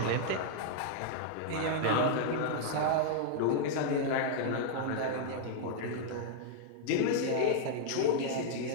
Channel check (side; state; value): both; different; correlation -0.01